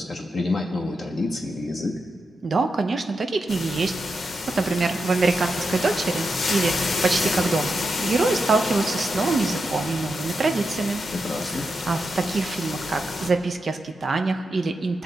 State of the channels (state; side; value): normal; both; correlation 0.87